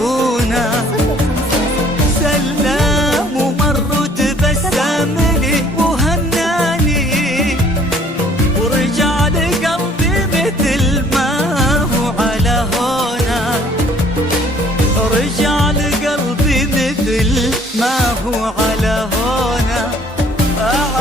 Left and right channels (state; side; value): normal; both; correlation 0.57